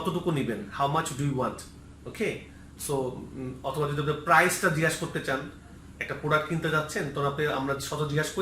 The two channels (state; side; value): identical; both; correlation 1.00